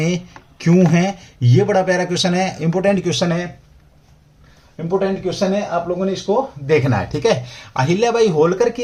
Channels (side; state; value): both; identical; correlation 1.00